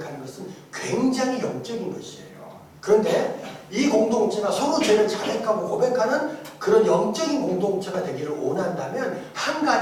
것은 굉장히 영적인 것이에요. 그런데 이 공동체가 서로 죄를 자백하고 고백하는 그 그런 영적인 공동체가 되기를 원한다면 한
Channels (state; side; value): identical; both; correlation 1.00